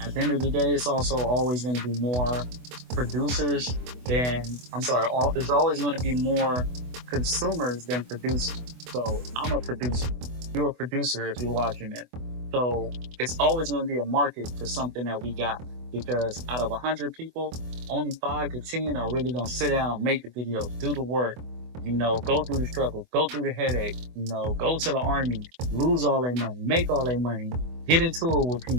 At the end of the day, it's also always going to be more producers than, there's always going to be more consumers than producers. So I'm a producer. You're a producer if you're watching it. So it's always going to be a market for something that we got, because out of 100 people, only 5 to 10 are really going to sit down, make the video, do the work, go through the struggle, go through the headache, go to the army, lose all their money, make all their money, get into it with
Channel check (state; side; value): late; left; 24 ms